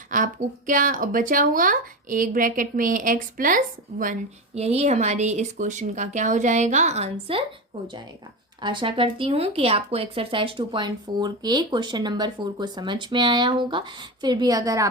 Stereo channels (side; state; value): both; normal; correlation 0.20